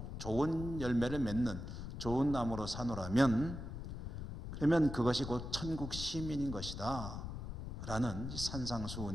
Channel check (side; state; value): left; noise; rumble, 7 dB below the sound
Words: 좋은 열매를 맺는 좋은 나무로 사노라면, 그러면 그것이 곧 천국 시민인 것이다 라는